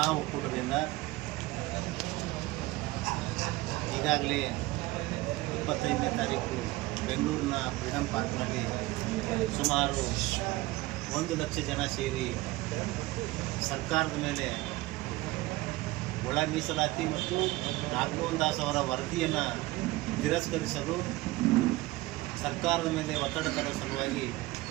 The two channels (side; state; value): left; quieter; 19.5 dB